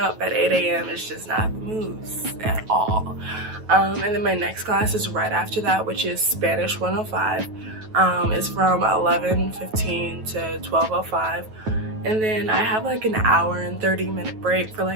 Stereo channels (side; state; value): left; late; 9.3 ms